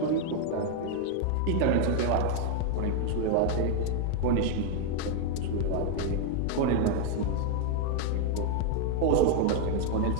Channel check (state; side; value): different; both; correlation 0.00